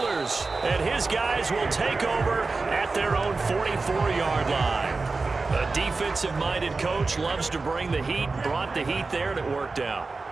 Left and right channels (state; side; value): quieter; left; 3.8 dB